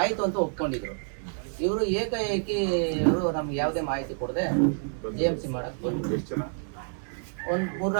ಆಯಿತು ಅಂತ ಒಪ್ಕೊಂಡಿದ್ರು. ಇವರು ಏಕಾಏಕಿ ಇವರು ನಮ್ಗೆ ಯಾವುದೇ ಮಾಹಿತಿ ಕೊಡದೆ JMC ಮಾಡಕ್ಕೆ ಬಂದ್ರು. ಒಂದು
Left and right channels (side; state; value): left; silent; digital silence